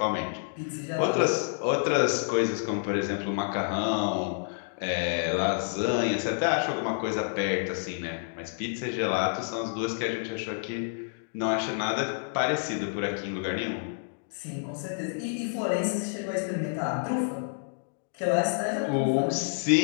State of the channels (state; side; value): silent; right; digital silence